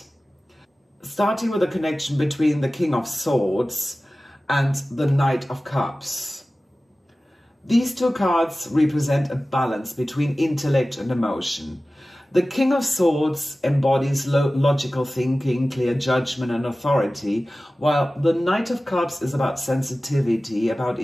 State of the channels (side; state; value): both; normal; correlation 0.96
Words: Starting with the connection between the King of Swords and the Knight of Cups. These two cards represent a balance between intellect and emotion. The King of Swords embodies logical thinking, clear judgment and authority, while the Knight of Cups is about sensitivity, about